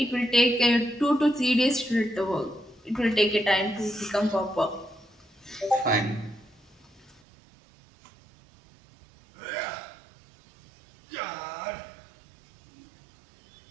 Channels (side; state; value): left; drops out; at 7.2 s